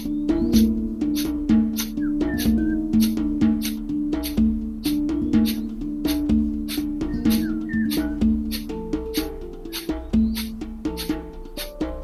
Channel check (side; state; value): both; identical; correlation 1.00